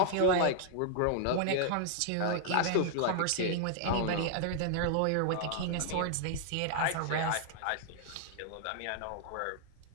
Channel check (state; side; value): different; both; correlation 0.00